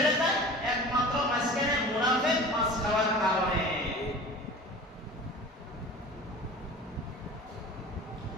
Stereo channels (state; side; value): normal; both; correlation 0.39